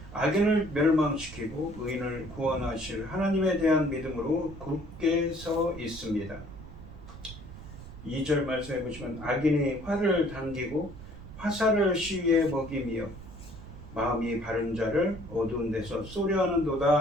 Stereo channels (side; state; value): right; noise; rumble, 14 dB below the sound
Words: 악인을 멸망시키고 의인을 구원하실 하나님에 대한 믿음으로 굳게 서 있습니다. 2절 말씀해 보시면 악인이 활을 당기고 화살을 시위에 먹이며 마음이 바른 자를 어두운 데서 쏘려